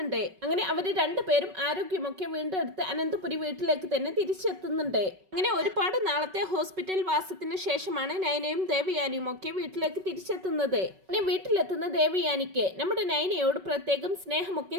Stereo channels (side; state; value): left; late; 5.3 ms